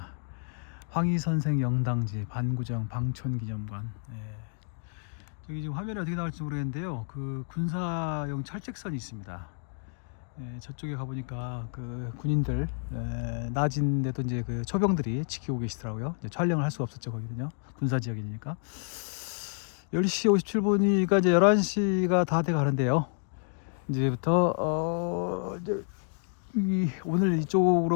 황희선생 영당지 반구정 방촌기념관. 예. 저기 지금 화면이 어떻게 나올지 모르겠는데요. 그 군사용 철책선이 있습니다. 예, 저쪽에 가보니까 그 군인들 낮인데도 이제 그 초병들이 지키고 계시더라고요. 이제 촬영을 할 수가 없었죠 거기는요. 군사지역이니까. 10시 57분이니까 이제 11시가 다 돼 가는데요. 이제부터 이제 오늘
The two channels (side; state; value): right; silent; 56 dB below the other